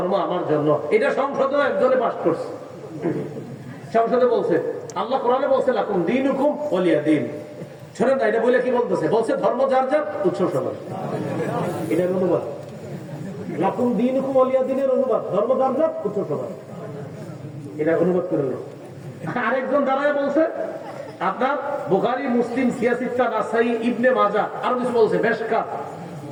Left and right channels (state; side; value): identical; both; correlation 1.00